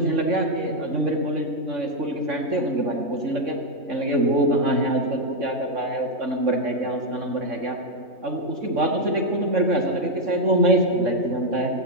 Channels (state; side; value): late; left; 3.6 ms